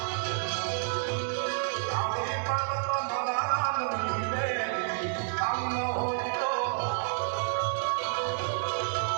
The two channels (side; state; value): left; silent; 58 dB below the other